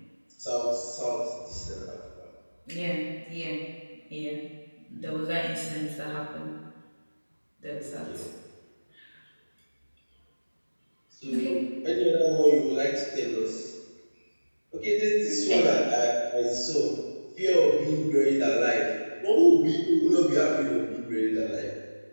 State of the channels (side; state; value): both; inverted; correlation -1.00